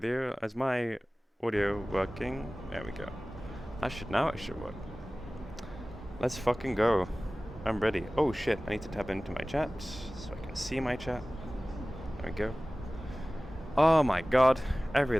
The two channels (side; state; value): both; normal; correlation 0.98